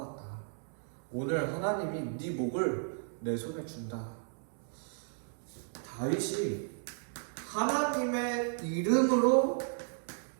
오늘 하나님이 네 목을 내 손에 준다. 다윗이 하나님의 이름으로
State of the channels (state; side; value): silent; left; 55 dB below the other